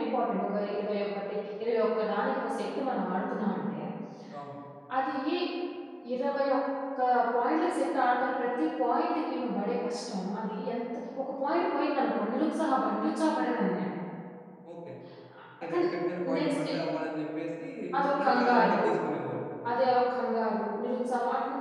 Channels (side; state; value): both; identical; correlation 1.00